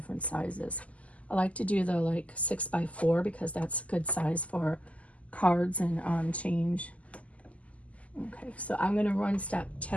sizes. I like to do the like 6x4 because that's a good size for cards and change. Okay, so I'm going to run step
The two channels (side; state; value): right; late; 0.069 ms